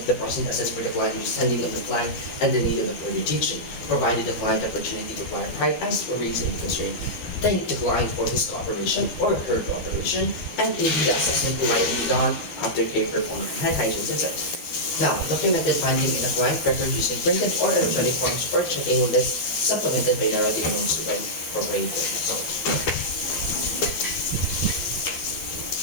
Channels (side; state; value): right; late; 12 ms